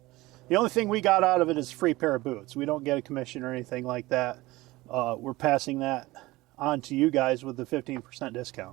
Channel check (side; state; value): left; quieter; 19.7 dB